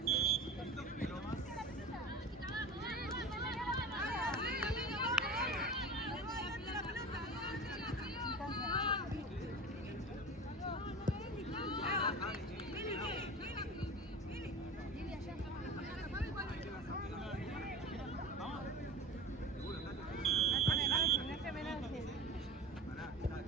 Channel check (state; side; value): normal; both; correlation 0.33